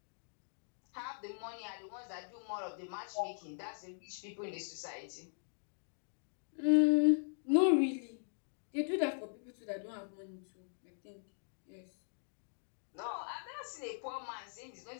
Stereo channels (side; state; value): right; silent; digital silence